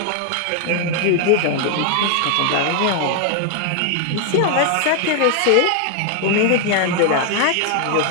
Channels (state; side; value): different; both; correlation 0.00